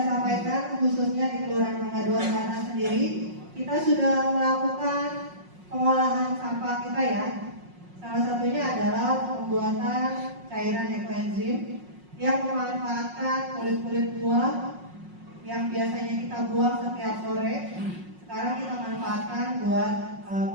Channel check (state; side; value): late; left; 5.5 ms